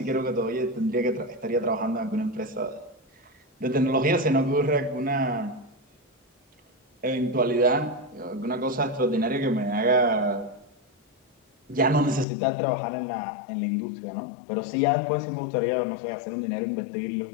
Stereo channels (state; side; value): drops out; right; at 12.2 s